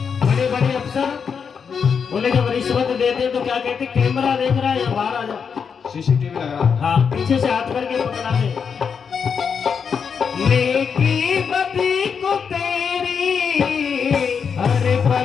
बड़े बड़े अफसर बोले जब रिश्वत देते तो क्या कहते, कैमरा देख रहा है या बाहर आ जा। सीसीटीवी लग रहा है। हाँ, पीछे से हाथ करके पकड़ा दे। नेकी बदी को तेरी हर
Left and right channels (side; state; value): right; quieter; 6.4 dB